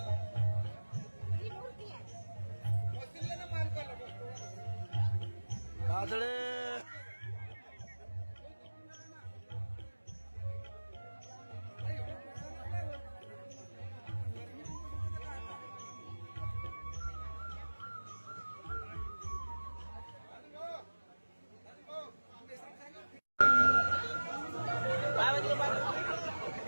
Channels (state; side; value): inverted; both; correlation -1.00